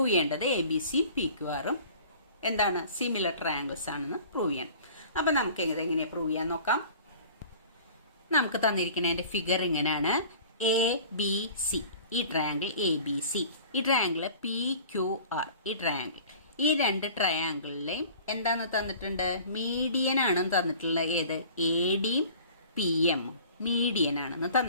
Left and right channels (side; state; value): both; inverted; correlation -0.45